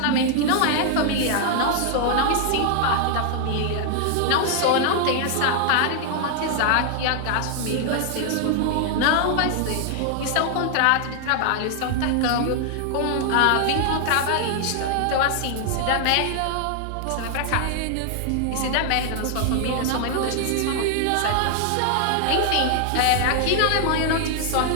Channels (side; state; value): both; different; correlation 0.00